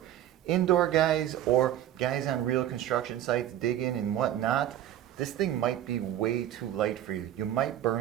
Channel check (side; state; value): left; quieter; 12.0 dB